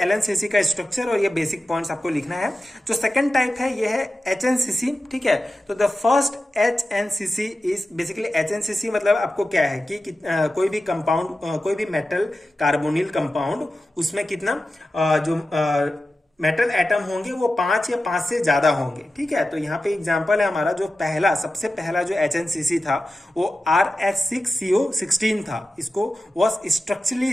LNCC का स्ट्रक्चर और ये बेसिक पॉइंट्स आपको लिखना है। जो सेकंड टाइप है ये है HNCC। ठीक है, तो the first HNCC is basically HNCC मतलब आपको क्या है कि कोई भी कंपाउंड, कोई भी मेटल कार्बोनिल कंपाउंड, उसमें कितना जो मेटल एटम होंगे वो 5 या 5 से ज्यादा होंगे। ठीक है, तो यहाँ पे एग्जांपल है हमारा जो सबसे पहला जो HNCC था वो RH6CO16 था। इसको वॉज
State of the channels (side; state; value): both; normal; correlation 0.93